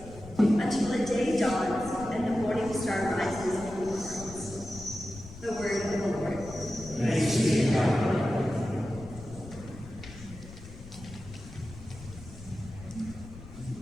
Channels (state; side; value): noise; left; rumble, 15 dB below the sound